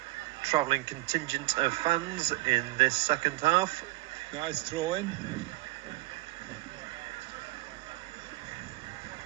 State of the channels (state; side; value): quieter; left; 20.6 dB